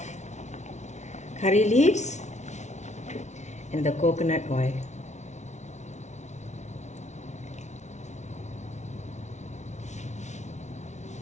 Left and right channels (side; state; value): right; late; 0.33 ms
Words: curry leaves and the coconut oil.